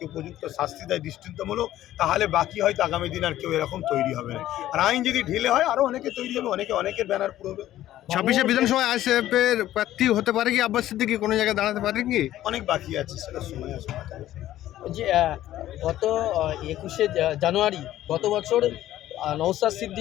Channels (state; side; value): quieter; right; 13.6 dB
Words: উপযুক্ত শাস্তি দেয় দৃষ্টান্তমূলক, তাহলে বাকি হয়তো আগামী দিন আর কেউ এরকম তৈরি হবে না। আর আইন যদি ঢিলে হয়, আরও অনেকে তৈরি হবে, অনেকের ব্যানার পুরোবে। 26শে বিধানসভায় আইএসএফ এর প্রার্থী হতে পারে কি আব্বাস সিদ্দিকী, কোনো জায়গায় দাঁড়াতে পারে কি? অনেক বাকি আছে, সেটা সময় আসবে। যে গত 21শে জানুয়ারি গত বছর নওশাদ